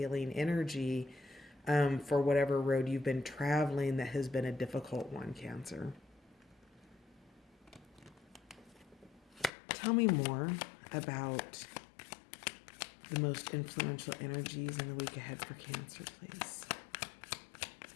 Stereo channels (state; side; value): drops out; right; at 9.5 s